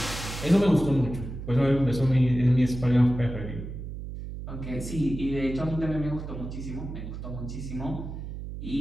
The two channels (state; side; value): noise; right; hum, 8 dB below the sound